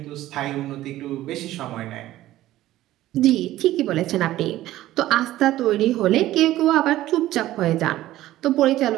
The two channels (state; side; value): quieter; left; 15.0 dB